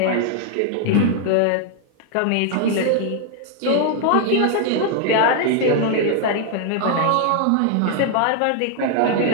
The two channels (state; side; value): different; both; correlation 0.00